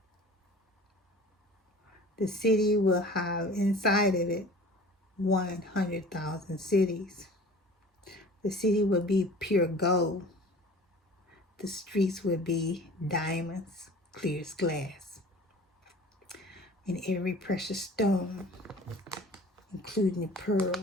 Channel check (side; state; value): both; normal; correlation 0.43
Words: have inside of it 100,000 cities. The city will be pure gold. The streets will be diamonds, clear as glass. And every precious stone, including the